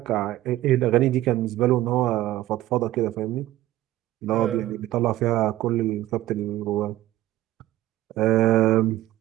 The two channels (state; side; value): quieter; left; 15.3 dB